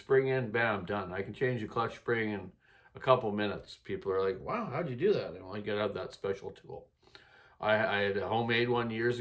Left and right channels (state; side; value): identical; both; correlation 1.00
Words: in, bam, done. I can change the clutch spring in a couple minutes. People are like, wow, how'd you do that? And I gotta have that special tool. I had a homemade one years